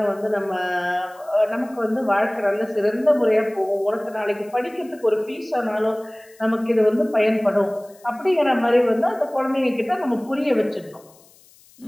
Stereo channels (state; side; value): noise; left; hiss, 28 dB below the sound